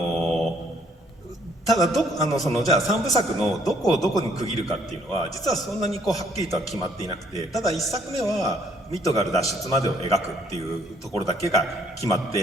ただじゃあ3部作のどこをどこに区切るかっていうのは実はそんなにはっきりとは決まっていなくて、ただ1作目はミッドガル脱出までを描くっていうところだけが決まっ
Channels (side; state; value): both; normal; correlation 0.65